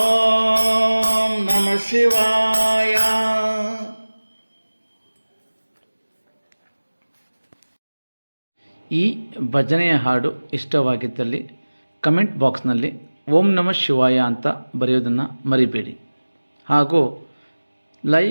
ನಮಃ ಶಿವಾಯ. ಈ ಭಜನೆಯ ಹಾಡು ಇಷ್ಟವಾಗಿದ್ದಲ್ಲಿ ಕಮೆಂಟ್ ಬಾಕ್ಸ್ನಲ್ಲಿ ಓಂ ನಮಃ ಶಿವಾಯ ಅಂತ ಬರೆಯೋದನ್ನು ಮರಿಬೇಡಿ. ಹಾಗೂ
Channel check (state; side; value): inverted; both; correlation -1.00